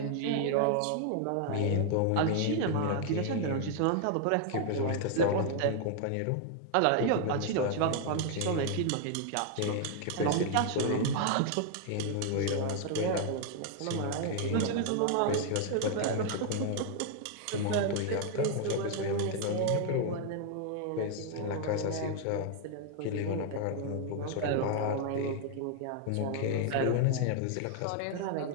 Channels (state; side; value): different; both; correlation 0.00